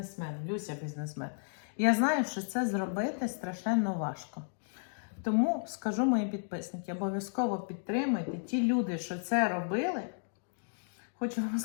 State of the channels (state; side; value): silent; right; digital silence